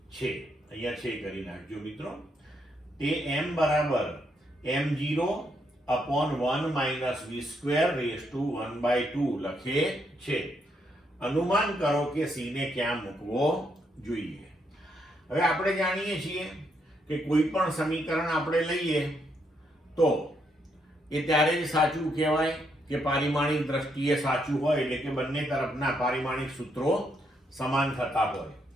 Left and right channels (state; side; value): normal; both; correlation 0.76